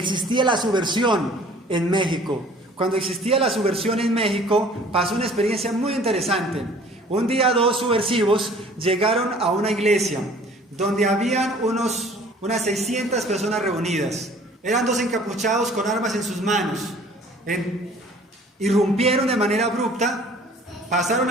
la subversión en México. Cuando existía la subversión en México, pasó una experiencia muy interesante. Un día 2 subversivos llegaron a una iglesia donde habían unas 600 personas reunidas. Eran 2 encapuchados con armas en sus manos. Irrumpieron de manera abrupta, pasaron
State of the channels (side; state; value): both; normal; correlation 0.51